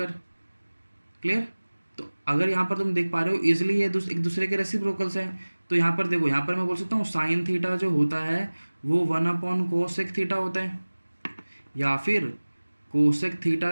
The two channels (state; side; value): inverted; both; correlation -1.00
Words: क्लियर? तो अगर यहाँ पर तुम देख पा रहे हो इजिली ये एक दूसरे के रेसिप्रोकल्स हैं, तो यहाँ पर देखो, यहाँ पर मैं बोल सकता हूँ साइन थीटा जो होता है वो वन अपॉन कोसेक थीटा होता है, या फिर कोसेक थीटा